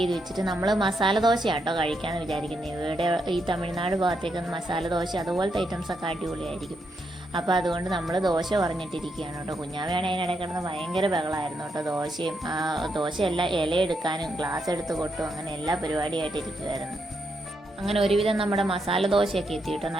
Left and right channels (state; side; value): normal; both; correlation 0.80